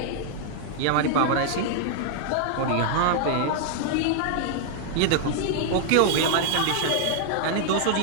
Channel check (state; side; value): different; both; correlation 0.00